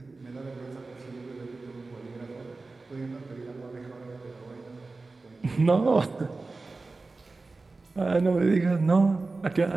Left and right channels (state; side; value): quieter; left; 3.6 dB